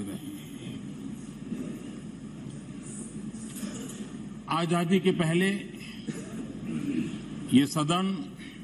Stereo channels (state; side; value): identical; both; correlation 1.00